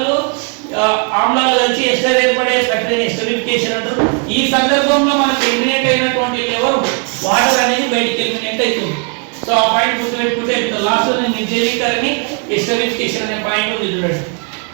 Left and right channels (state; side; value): quieter; left; 38.2 dB